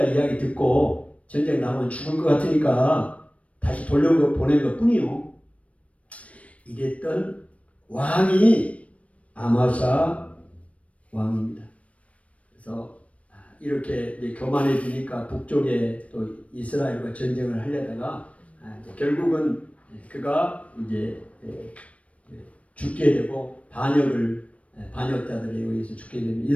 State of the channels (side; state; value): right; late; 0.065 ms